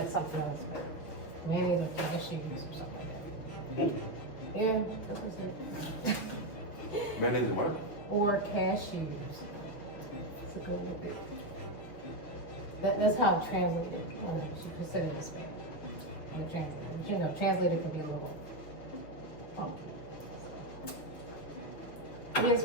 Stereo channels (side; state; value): right; late; 6.6 ms